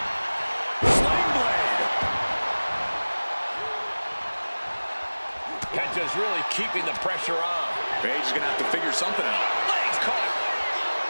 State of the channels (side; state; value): both; inverted; correlation -1.00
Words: Penta's really keeping the pressure on. Paige is going to have to figure something out. Legs caught.